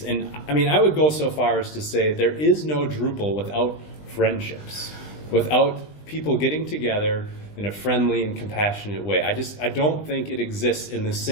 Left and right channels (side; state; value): right; late; 20 ms